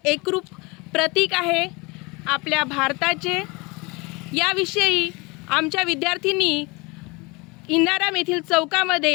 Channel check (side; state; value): right; quieter; 26.5 dB